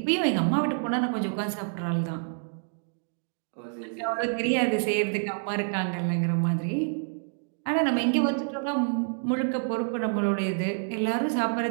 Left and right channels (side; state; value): left; silent; digital silence